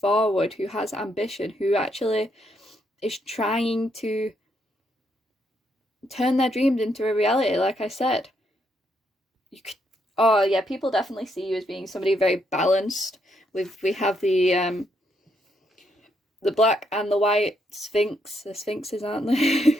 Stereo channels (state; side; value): normal; both; correlation 0.76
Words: who has ambition, who actually is trying to turn their dreams into a reality, like I said. Oh yeah, people definitely see you as being somebody very balanced. We have the black and the white sphinx. The sphinxes, aren't